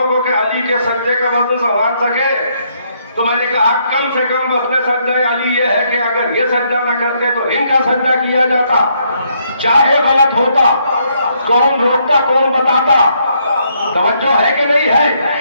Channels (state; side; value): inverted; both; correlation -0.72